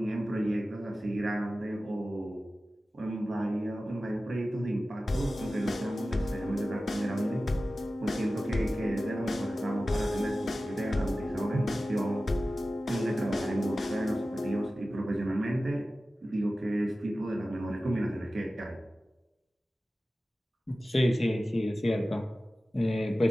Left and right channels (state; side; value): normal; both; correlation 0.95